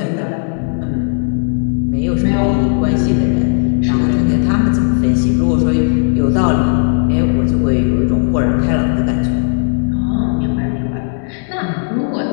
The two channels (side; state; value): right; silent; 55 dB below the other